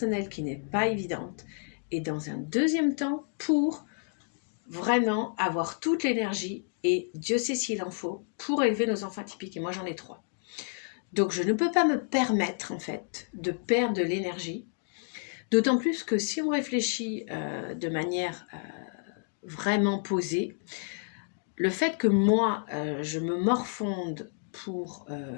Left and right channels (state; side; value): silent; right; 58 dB below the other